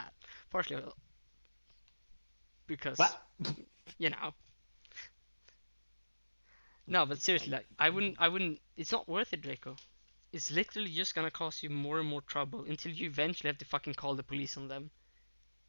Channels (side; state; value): both; inverted; correlation -1.00